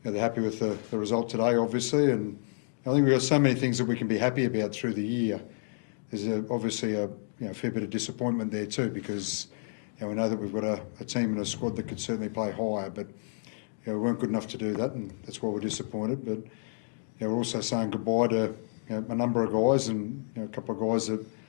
happy with the result today, obviously, and I think we've got so many things that we can be happy about through the year. There's obviously a fair bit of disappointment there too, because we know that we've got a team and a squad that can certainly play higher, but we weren't good enough to do that, and that's why we're disappointed. But we're also saying goodbye to a number of guys, and a couple of guys that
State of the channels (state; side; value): silent; right; digital silence